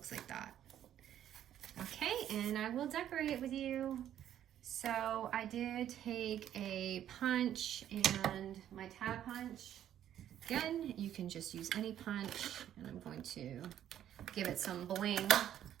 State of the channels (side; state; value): left; quieter; 10.9 dB